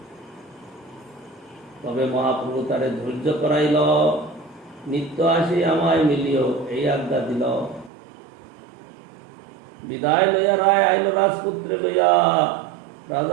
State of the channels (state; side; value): drops out; left; at 7.9 s